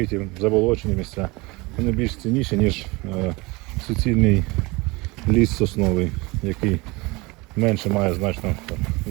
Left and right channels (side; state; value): left; quieter; 24.5 dB